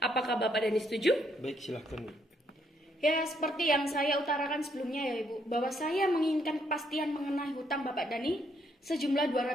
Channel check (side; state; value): both; normal; correlation 0.72